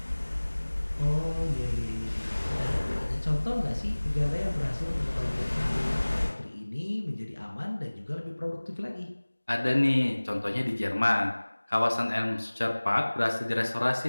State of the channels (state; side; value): inverted; both; correlation -1.00